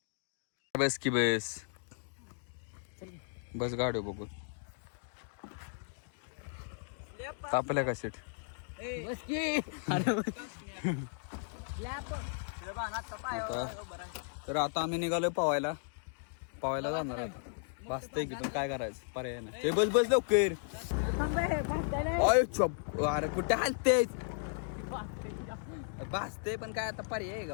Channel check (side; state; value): right; silent; digital silence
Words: बस की बस बस गाडी बघू तापल्या का सीट. बस की तर आता आम्ही निघालोय पवायला जाणार आहे. भासतंय की पण काय करायचं पर्याय नाही. बस बस लवकर. अरे कुठे हालतेच भासते पण काय आता पर्याय आहे का